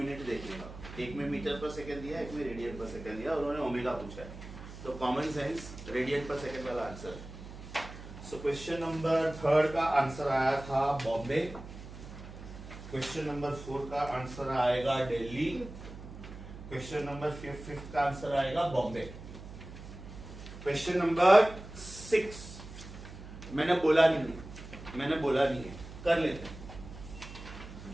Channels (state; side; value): noise; right; hum, 13 dB below the sound